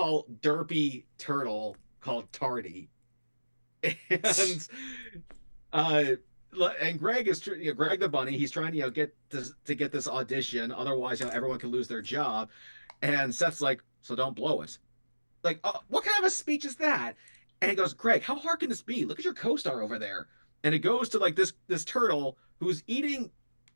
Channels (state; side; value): inverted; both; correlation -1.00